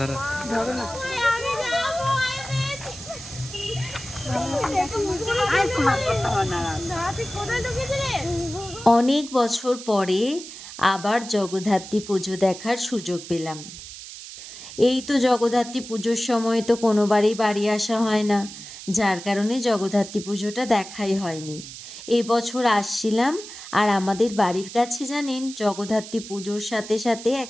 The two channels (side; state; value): right; noise; hiss, 13 dB below the sound